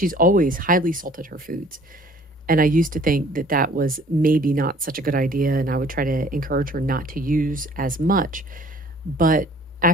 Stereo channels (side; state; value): both; normal; correlation 0.54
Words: always highly salted her foods. And I used to think that that was maybe not such a good idea, and I would try to encourage her not to use as much. But